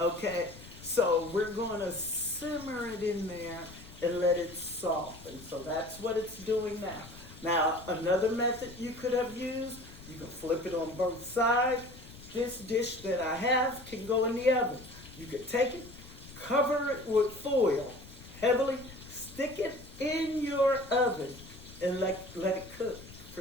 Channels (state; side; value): noise; left; rumble, 17 dB below the sound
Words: so we're going to simmer it in there and let it soften. So that's what it's doing now. Now, another method you could have used, you can flip it on both sides. This dish that I have can go in the oven. You could take it, Cover it with foil, heavily. Stick it in your oven and let it cook